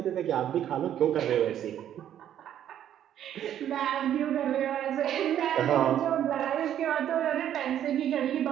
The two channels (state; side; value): quieter; left; 10.6 dB